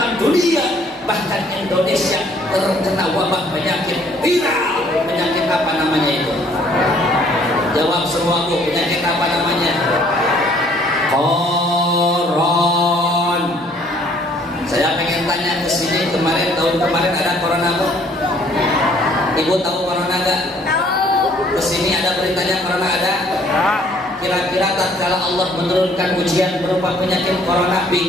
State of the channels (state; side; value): normal; both; correlation 0.61